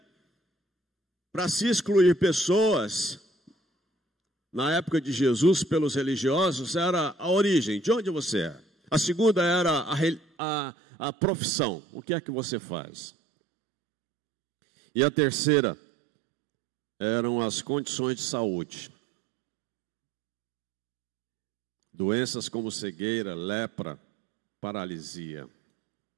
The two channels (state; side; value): drops out; left; at 10.2 s